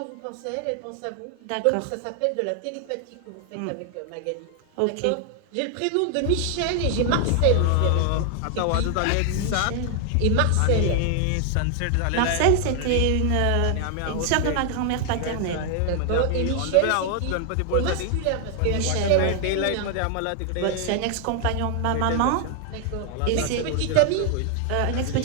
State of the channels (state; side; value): different; both; correlation 0.00